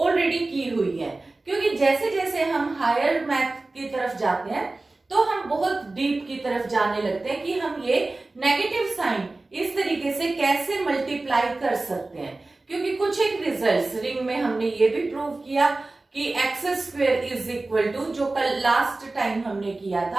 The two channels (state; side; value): quieter; left; 3.2 dB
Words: की हुई है, क्योंकि जैसे जैसे हम हायर मैथ की तरफ जाते हैं तो हम बहुत डीप की तरफ जाने लगते हैं कि हम ये नेगेटिव साइन इस तरीके से कैसे मल्टीप्लाई कर सकते हैं. क्योंकि कुछ एक रिजल्ट्स रिंग में हमने ये भी प्रूव किया कि x square is equal to, जो कल लास्ट टाइम हमने किया